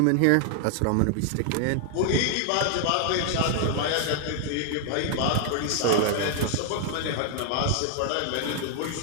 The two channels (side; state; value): both; different; correlation 0.00